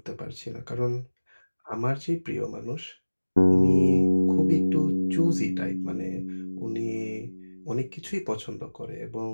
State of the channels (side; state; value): both; inverted; correlation -1.00